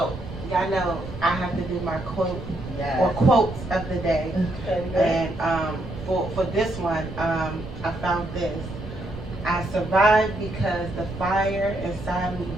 y'all know I have to do my quote or Yeah. quotes of the day. Okay. And for this one, I found this. I survived because the fire inside me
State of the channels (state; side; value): noise; right; rumble, 11 dB below the sound